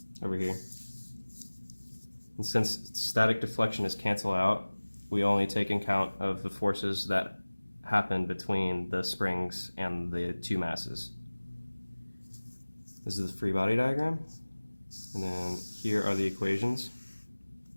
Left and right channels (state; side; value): inverted; both; correlation -1.00